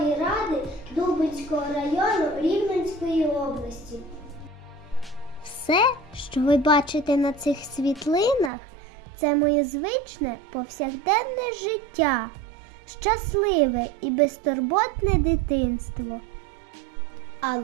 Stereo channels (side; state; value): left; drops out; at 8.5 s